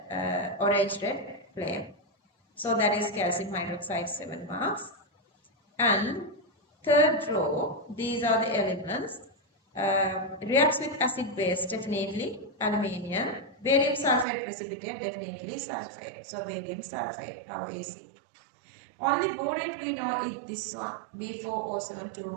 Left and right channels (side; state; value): left; drops out; at 14.2 s